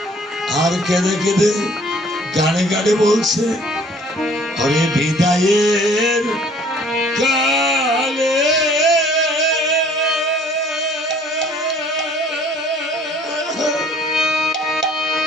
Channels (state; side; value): normal; both; correlation 0.55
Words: আর কেঁদে কেঁদে গানে গানে বলছে হরে বিদায়ের কালে